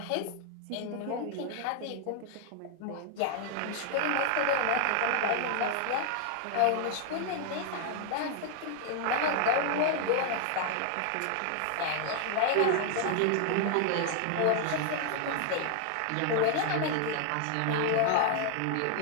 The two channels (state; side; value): different; both; correlation 0.00